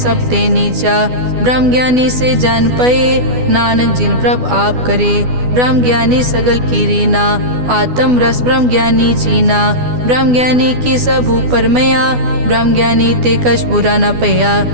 ते नीचा, ब्रह्म ज्ञानी से जान पए, नानक जिन प्रभ आप करे, ब्रह्म ज्ञानी सगल की रीना, आत्म रस ब्रह्म ज्ञानी चीना, ब्रह्म ज्ञानी की सब ऊपर मया, ब्रह्म ज्ञानी ते कछ बुरा न पया,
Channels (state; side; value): late; left; 12 ms